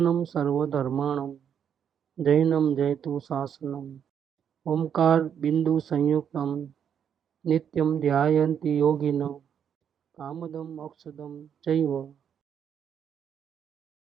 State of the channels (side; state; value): left; quieter; 8.3 dB